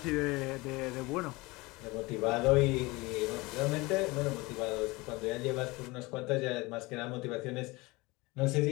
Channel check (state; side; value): quieter; right; 23.2 dB